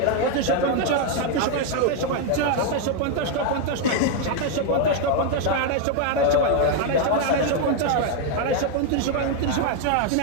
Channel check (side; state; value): both; different; correlation 0.01